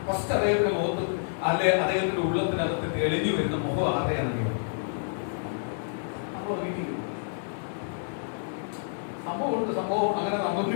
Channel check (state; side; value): silent; right; digital silence